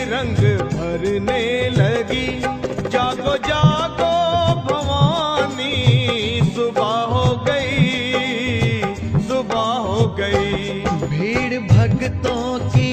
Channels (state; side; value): identical; both; correlation 1.00